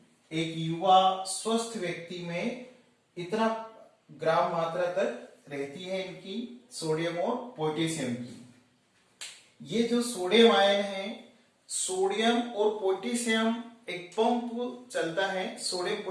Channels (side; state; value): both; identical; correlation 1.00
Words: एक युवा स्वस्थ व्यक्ति में इतना ग्राम मात्रा तक रहती है इनकी सोडियम और पोटेशियम की। ये जो सोडियम आयन है, सोडियम और पोटेशियम एक पंप चलता है, सोडियम